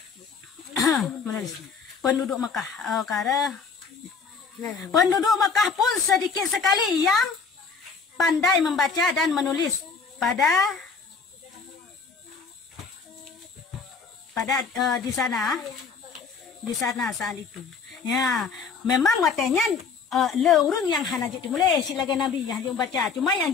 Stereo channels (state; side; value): quieter; right; 5.3 dB